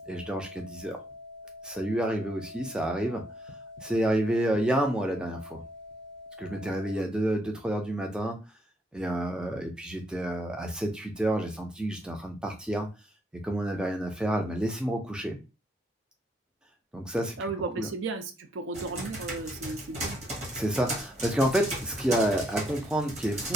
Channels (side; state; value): both; normal; correlation 0.73